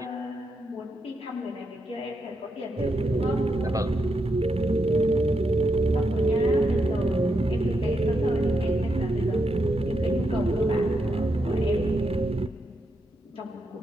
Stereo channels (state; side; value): normal; both; correlation 0.82